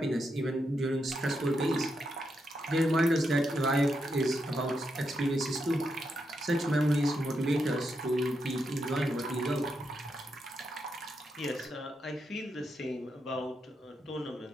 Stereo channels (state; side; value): normal; both; correlation 0.83